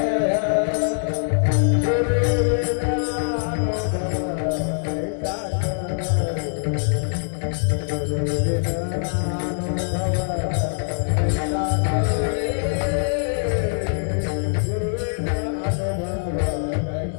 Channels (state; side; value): silent; right; digital silence